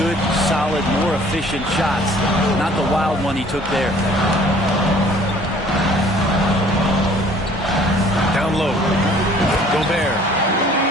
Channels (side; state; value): both; normal; correlation 0.54